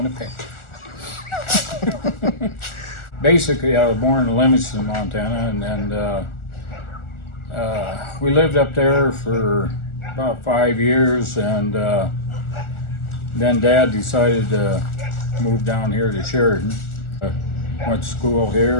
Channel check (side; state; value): right; late; 1.4 ms